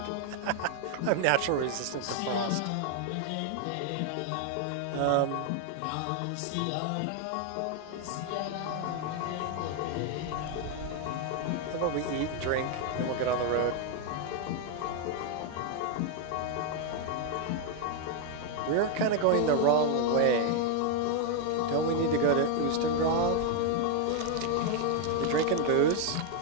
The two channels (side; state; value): both; different; correlation 0.00